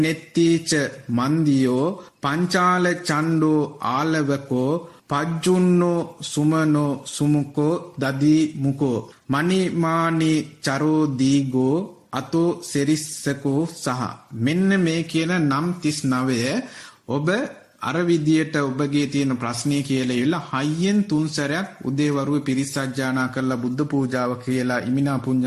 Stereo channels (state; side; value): identical; both; correlation 1.00